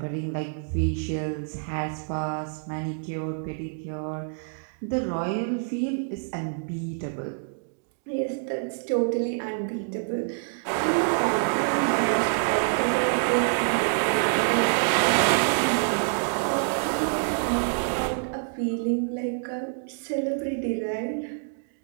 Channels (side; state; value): left; silent; digital silence